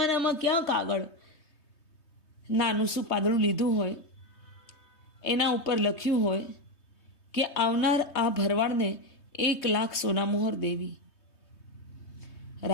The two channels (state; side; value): late; right; 3.2 ms